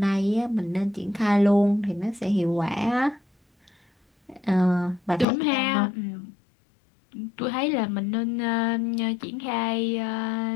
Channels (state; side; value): drops out; right; at 5.2 s